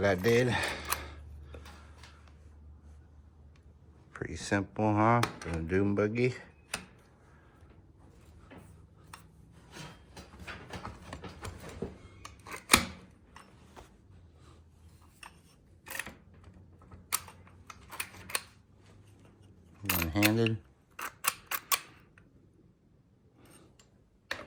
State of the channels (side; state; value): both; identical; correlation 1.00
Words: I did. Pretty simple, huh? For a dune buggy. One-handed.